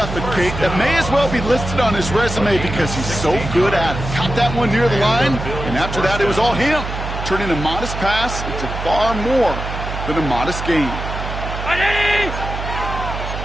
Kate. That may as well be listed on his resume because he's so good at it. Caught that one near the line, and after that it was all him. Turning a modest pass into far more than a modest gain.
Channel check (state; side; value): noise; right; hum, 6 dB below the sound